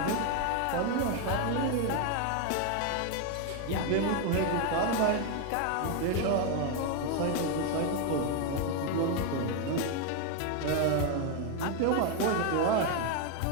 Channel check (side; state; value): both; different; correlation 0.01